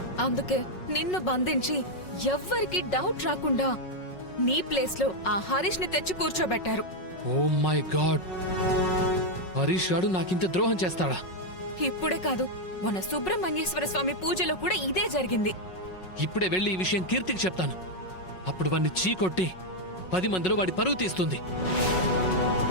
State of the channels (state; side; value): late; right; 5.4 ms